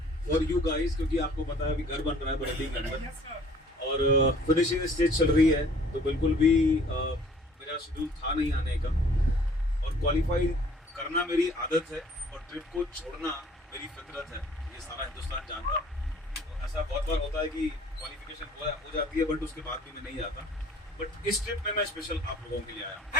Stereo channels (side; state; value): both; normal; correlation 0.54